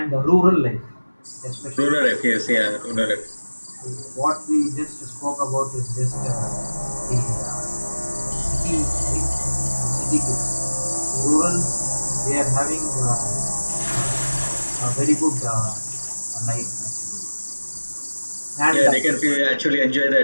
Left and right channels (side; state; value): both; inverted; correlation -1.00